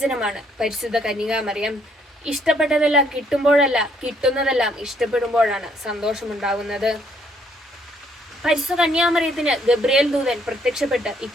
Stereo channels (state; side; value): normal; both; correlation 0.68